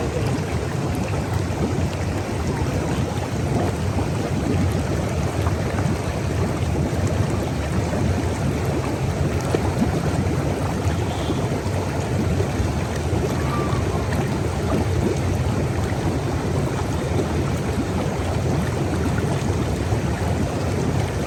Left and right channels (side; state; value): both; identical; correlation 1.00